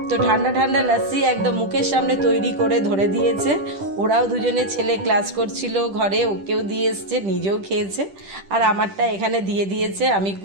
তো ঠান্ডা ঠান্ডা লস্যি একদম মুখের সামনে তৈরি করে ধরে দিয়েছে। ওরাও দুজনে, ছেলে ক্লাস করছিল ঘরে, ওকেও দিয়ে এসছে, নিজেও খেয়েছে, আর আমারটা এখানে দিয়ে দিয়েছে। আমি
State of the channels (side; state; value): left; late; 10 ms